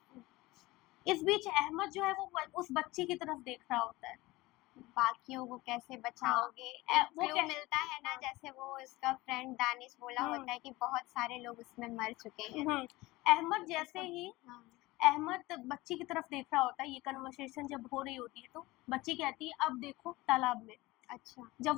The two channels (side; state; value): right; quieter; 20.1 dB